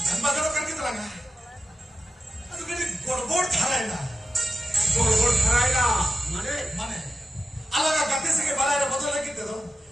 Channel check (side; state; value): both; normal; correlation 0.92